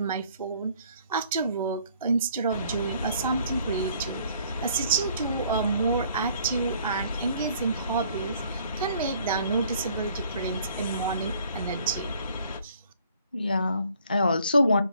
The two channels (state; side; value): inverted; both; correlation -0.60